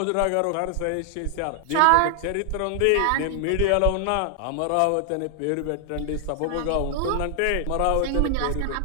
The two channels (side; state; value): both; different; correlation 0.00